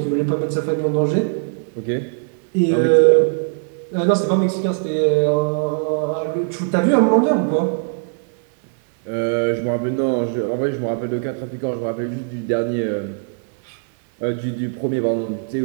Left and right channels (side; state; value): left; silent; 64 dB below the other